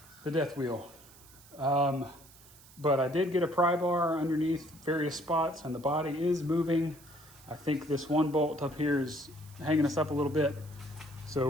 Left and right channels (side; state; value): right; noise; hiss, 23 dB below the sound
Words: death wheel. But I did get a pry bar underneath various spots, and the body is moving. I think this one bolt up here is hanging us up a little bit. So